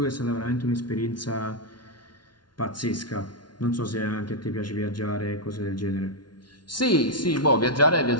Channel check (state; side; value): late; right; 0.70 ms